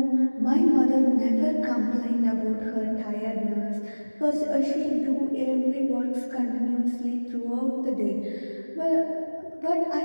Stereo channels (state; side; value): inverted; both; correlation -1.00